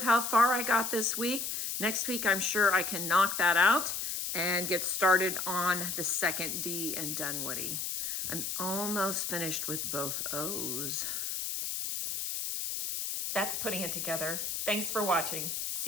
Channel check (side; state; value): left; noise; hiss, 3 dB below the sound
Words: how far I got this week. Next week, I'm sure I can knock that out and get started on the second D in Dunwoody. I'm almost finished with both O's. That's putting it together. Thanks for watching.